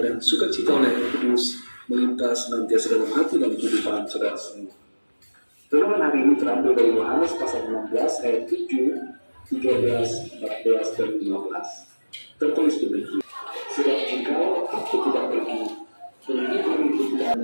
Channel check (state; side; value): inverted; both; correlation -1.00